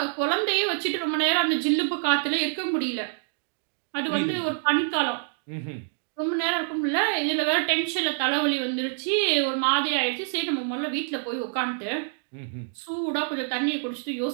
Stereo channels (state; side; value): silent; left; digital silence